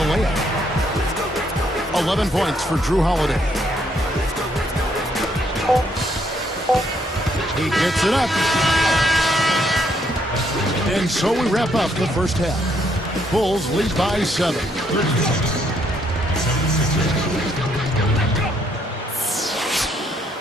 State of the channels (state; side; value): normal; both; correlation 0.71